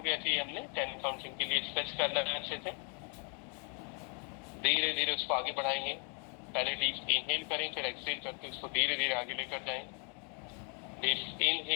ऐसे ही हमने 10 काउंटिंग के लिए स्ट्रेच करना है अच्छे से। धीरे धीरे उसको आगे बढ़ाएंगे। पहले डीप इनहेल करें, फिर एक्सहेल करके उसको धीरे धीरे आगे लेकर जाएं। डीप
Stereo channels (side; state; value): right; quieter; 38.5 dB